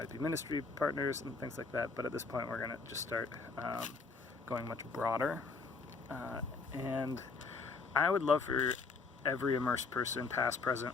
be ministry partners and things like that. But at this point we're going to just start going much broader. And I would love for every Immerse person, past,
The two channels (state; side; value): quieter; right; 4.4 dB